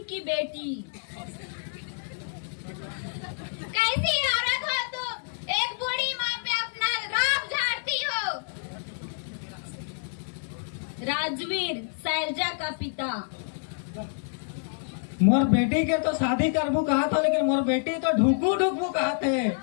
की बेटी। कैसी औरत हो तुम? एक बूढ़ी माँ पे अपना राम झाड़ती हो। राजवीर, शैलजा का पिता। मोर बेटी के तो शादी करबू कहा था, लेकिन मोर बेटी तो ढुकू ढुकू कहा थे।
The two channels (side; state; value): right; silent; digital silence